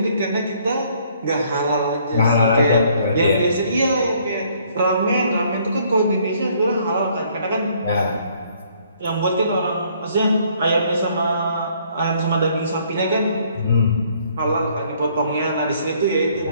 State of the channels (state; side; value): inverted; both; correlation -0.63